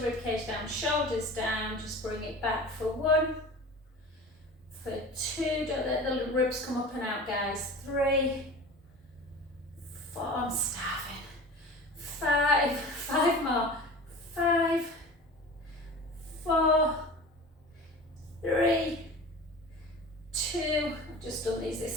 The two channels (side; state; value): both; normal; correlation 0.36